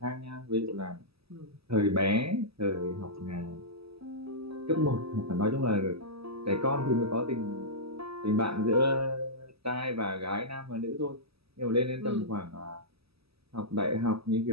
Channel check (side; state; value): left; late; 0.78 ms